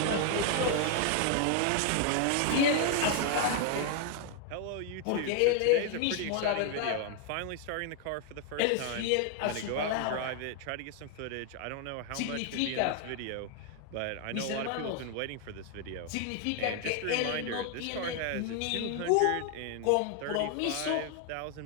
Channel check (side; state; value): both; different; correlation 0.00